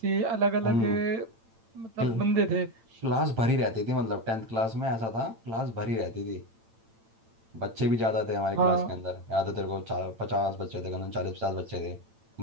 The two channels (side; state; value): left; late; 8.9 ms